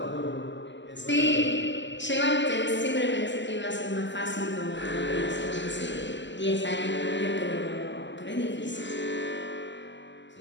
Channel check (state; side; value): late; right; 0.53 ms